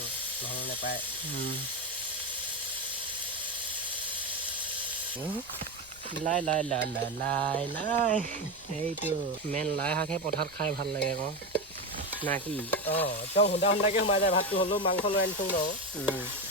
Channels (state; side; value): noise; left; rumble, 25 dB below the sound